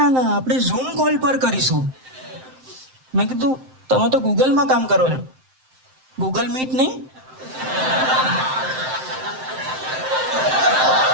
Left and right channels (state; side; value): late; left; 7.7 ms